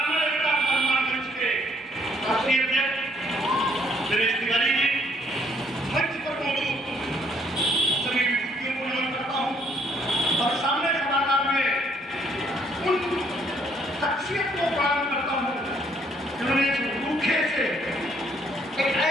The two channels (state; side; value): normal; both; correlation 0.66